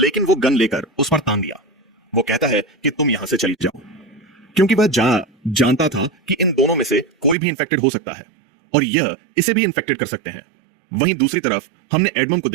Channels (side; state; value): left; drops out; at 7.4 s